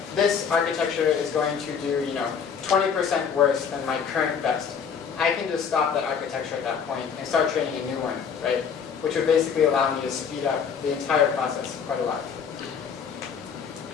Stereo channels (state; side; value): quieter; right; 6.8 dB